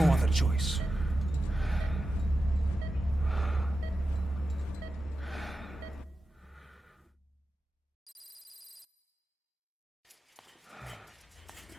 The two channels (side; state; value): both; normal; correlation 0.92